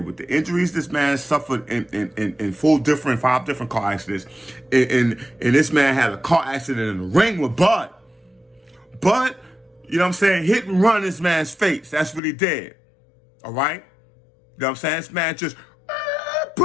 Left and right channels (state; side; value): drops out; right; at 12.2 s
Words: with the injuries this man suffered in 5 different car accidents, and this man had a car accident in the ring with Bud. Bud, hit and run this man's face. That's what he did. All right? This man just